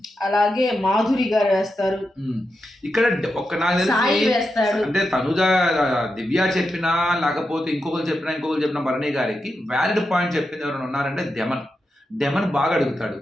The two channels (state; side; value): normal; both; correlation 0.88